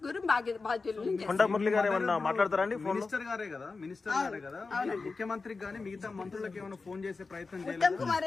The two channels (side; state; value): right; quieter; 4.1 dB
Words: బాధ్యులు. కొండ మురళి గారు ఏమన్నా మాట్లాడతారండి? మినిస్టర్ గారే కదా ముఖ్యమంత్రికి కానీ మిగతా మంత్రులకు ఏమైనా ఫోన్ చేసే ప్రయత్నం చేయాలి. ఉత్తమ్ కుమార్